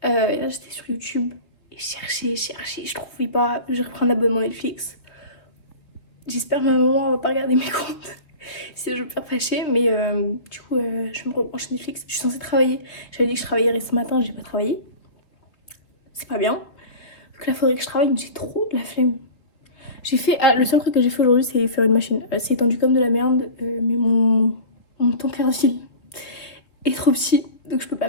Là, j'étais sur YouTube et cherchais. Je trouvais pas. J'ai repris un abonnement Netflix. J'espère que ma maman va pas regarder mes comptes. Si je veux pas fâcher, mais du coup, je vais me rebrancher Netflix. Je suis censée travailler. J'avais dit que je travaillerais ce matin, j'ai pas travaillé. C'est pas bien. Donc là, faudrait que je travaille, mais j'ai trop de la flemme. J'ai fait. Ah, le seul truc que j'ai fait aujourd'hui, c'est faire une machine. C'est étendu comme de la merde, mais mon temps cardile est trop petit, donc je peux pas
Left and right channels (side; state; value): right; late; 3.1 ms